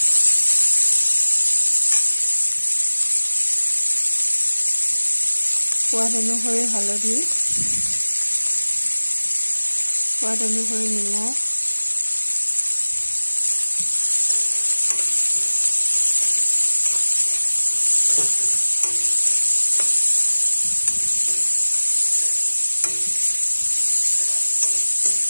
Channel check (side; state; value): both; inverted; correlation -1.00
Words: সোৱাদ অনুসৰি হালধি সোৱাদ অনুসৰি নিমখ